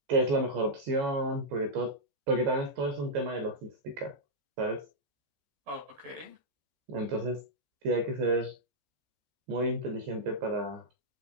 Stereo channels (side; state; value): left; late; 14 ms